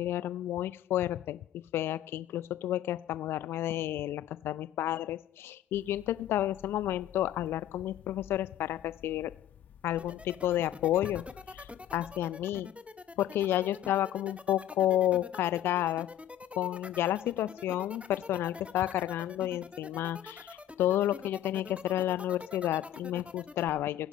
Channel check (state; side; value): quieter; right; 12.2 dB